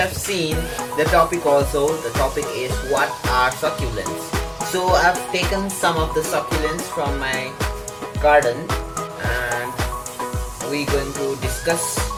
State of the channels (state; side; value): identical; both; correlation 1.00